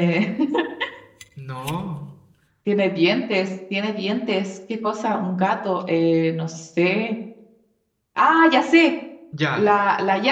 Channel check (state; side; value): identical; both; correlation 1.00